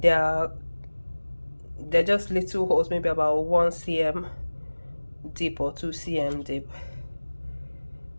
They're just little holes, maybe about 1 cm deep or 2 cm deep.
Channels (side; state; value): both; inverted; correlation -1.00